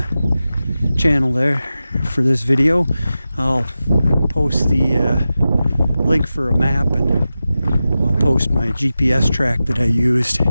channel there for this video, I'll post the link for a map, and I'll post my GPS track that I used.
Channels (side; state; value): both; inverted; correlation -0.93